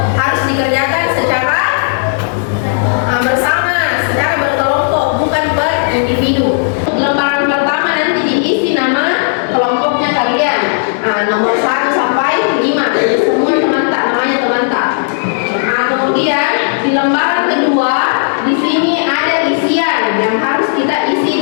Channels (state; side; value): silent; right; digital silence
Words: harus dikerjakan secara bersama, secara berkelompok, bukan berindividu. Lembaran pertama nanti diisi nama kelompoknya kalian, nomor 1 sampai 5, jadi semua teman-teman namanya teman-teman. Kemudian di lembaran kedua di sini ada isian yang harus kita